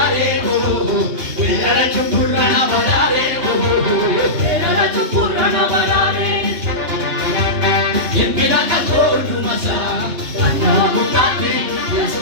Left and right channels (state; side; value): late; left; 3.1 ms